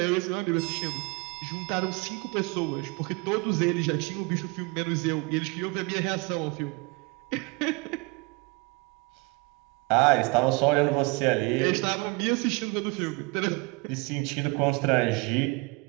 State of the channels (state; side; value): quieter; left; 27.7 dB